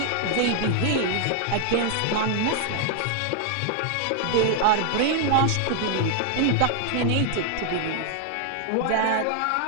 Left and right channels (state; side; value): different; both; correlation 0.00